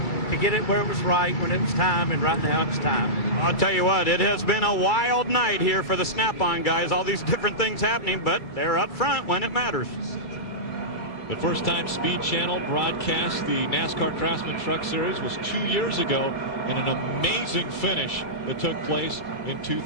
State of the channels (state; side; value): late; right; 2.3 ms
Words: to get it where it was right when it was time, and right now it's time. I'll tell you what, it has been a wild night here for the Snap-on guys. All these different things happening, but they're up front when it matters. The first time Speed Channel broadcast the NASCAR Craftsman Truck Series was 2 years ago, and an amazing finish that took place in